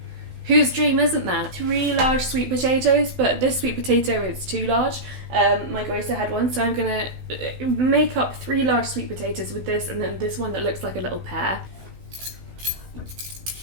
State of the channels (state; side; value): late; left; 16 ms